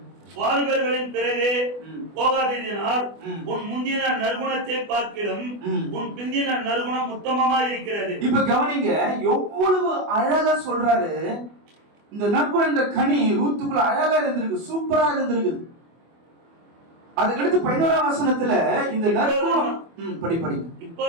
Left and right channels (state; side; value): late; left; 24 ms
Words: வாலிபர்களின் பிறகு போகாததினால் உன் முந்தின நற்குணத்தை பார்க்கிலும் உன் பிந்தின நற்குணம் உத்தமமா இருக்கிறது. இப்ப கவனிங்க, எவ்வளவு அழகா சொல்றாரு. இந்த நற்குணம் என்ற கனி ரூத்துக்குள்ள அழகா இருந்திருக்கு, சூப்பரா இருந்திருக்கு. அதுக்கடுத்து 11ஆம் வசனத்துல இந்த நற்குணம் படி